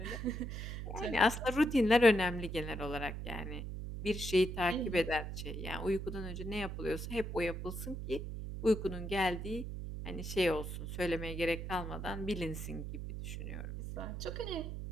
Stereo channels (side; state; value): right; noise; hum, 6 dB below the sound